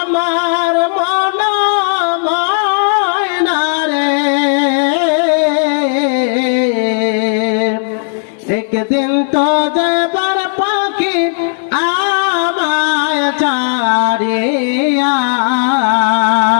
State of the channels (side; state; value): right; silent; digital silence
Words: মন ময়না রে একদিন তো যাবার পাখি আমায় ছাড়িয়া